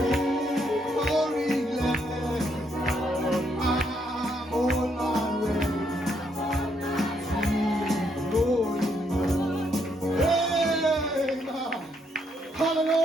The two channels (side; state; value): both; normal; correlation 0.74